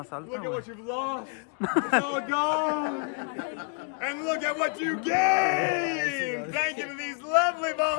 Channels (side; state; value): right; quieter; 38.3 dB